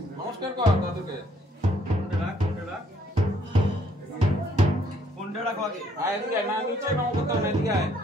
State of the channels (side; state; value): both; normal; correlation 0.66